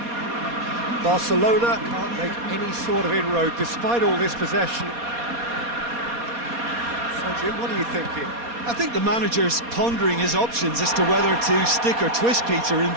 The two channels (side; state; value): left; late; 4.2 ms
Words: Barcelona can't make any sort of inroad despite all this possession. So, Jim, what are you thinking? I think the manager's pondering his options as to whether to stick or twist, Peter, in